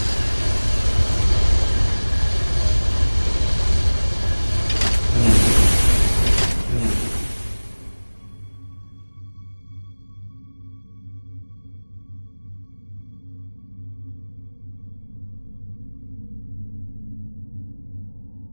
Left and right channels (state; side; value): inverted; both; correlation -1.00